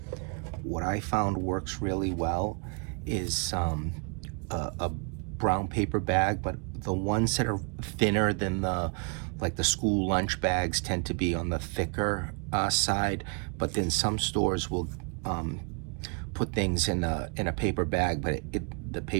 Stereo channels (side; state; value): left; quieter; 36.3 dB